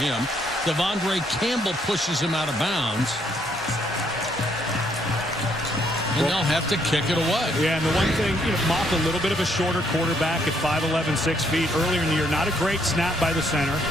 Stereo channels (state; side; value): normal; both; correlation 0.70